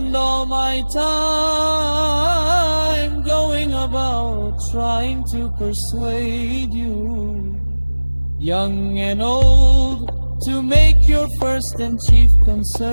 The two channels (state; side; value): inverted; both; correlation -1.00